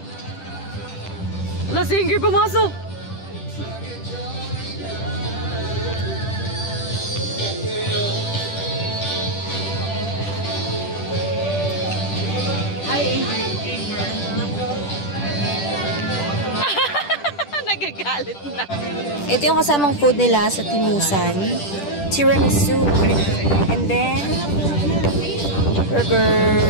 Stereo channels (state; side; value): late; right; 10 ms